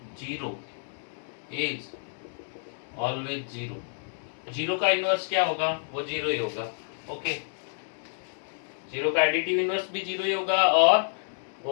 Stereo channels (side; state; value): right; silent; digital silence